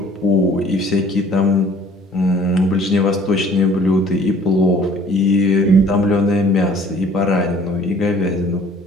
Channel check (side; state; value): both; normal; correlation 0.54